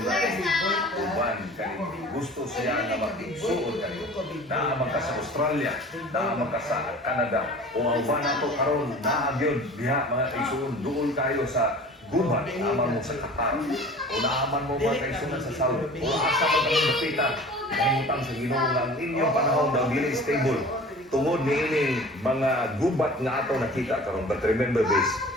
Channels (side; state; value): both; normal; correlation 0.42